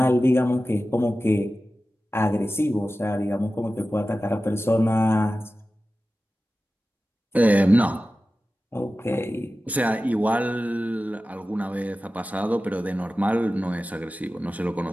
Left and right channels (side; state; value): both; normal; correlation 0.95